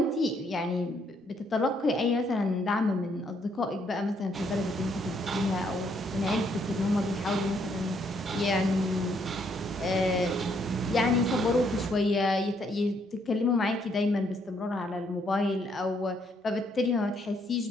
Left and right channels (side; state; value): both; normal; correlation 0.71